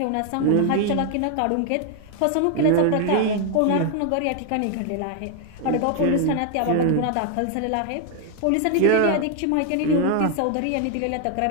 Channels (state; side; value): different; both; correlation 0.00